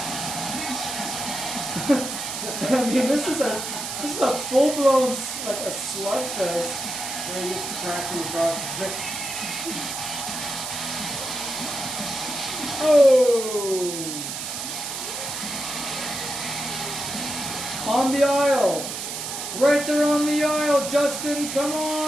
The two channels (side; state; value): right; noise; hiss, 5 dB below the sound